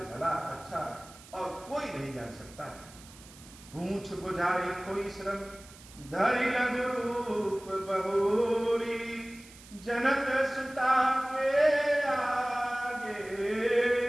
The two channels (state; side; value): noise; right; hiss, 20 dB below the sound